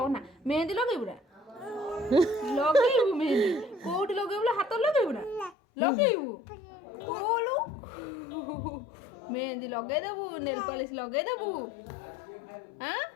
ଅନା ମେହେନ୍ଦି ଲଗେଇବୁ ନା ଲଗେଇବୁ ମେହେନ୍ଦି କୋଉଠି ଲଗେଇବୁ ହାତରେ ଲଗେଇବୁ ନା ଲଗେଇବୁ କୋଲୁ ମେହେନ୍ଦି ଲଗେଇଦେବୁ ନେଲ ପଲିଶ ଲଗେଇଦେବୁ ଆଁ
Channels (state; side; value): drops out; right; at 5.6 s